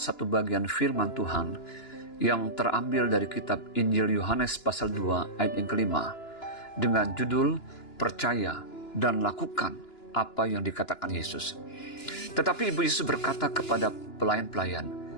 bagian firman Tuhan yang terambil dari kitab Injil Yohanes pasal 2 ayat yang kelima dengan judul Percaya dan Lakukan apa yang dikatakan Yesus. Tetapi Ibu Yesus berkata kepada pelayan-pelayan,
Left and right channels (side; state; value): right; late; 2.9 ms